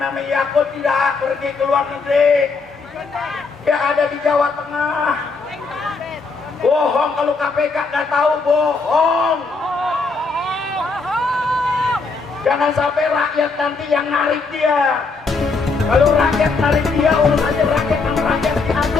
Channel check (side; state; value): right; quieter; 4.2 dB